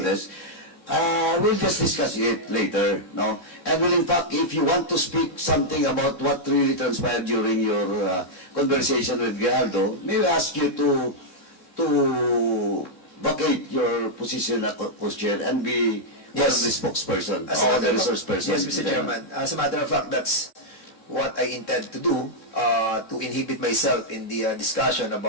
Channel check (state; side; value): late; right; 3.6 ms